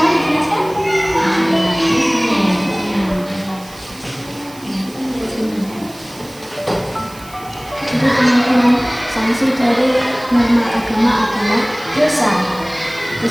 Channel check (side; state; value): right; noise; hiss, 21 dB below the sound